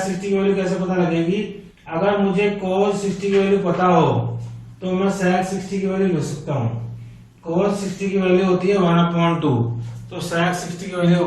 60 की वैल्यू कैसे पता लगेगी, अगर मुझे cos 60 की वैल्यू पता हो तो मैं sec 60 की वैल्यू लिख सकता हूँ। cos 60 की वैल्यू होती है 1/2, तो sec 60 की वैल्यू हो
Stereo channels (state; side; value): identical; both; correlation 1.00